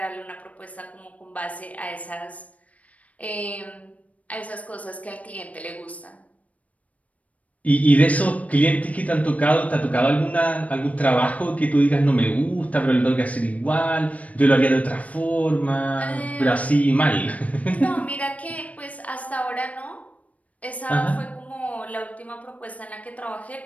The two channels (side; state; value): right; late; 0.068 ms